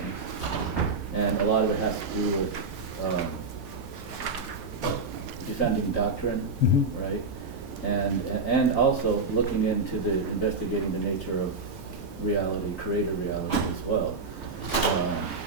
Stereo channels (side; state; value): left; quieter; 3.6 dB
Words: and a lot of it has to do with defending doctrine, right? And also looking into investigating the nature of reality, creator reality as well.